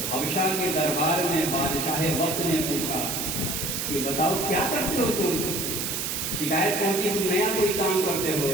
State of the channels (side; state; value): right; noise; hiss, 2 dB below the sound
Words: حبشہ کے دربار میں بادشاہ وقت نے پوچھا کہ بتاؤ کیا کرتے ہو تم؟ شکایت پہنچی تم نیا کوئی کام کرتے ہو.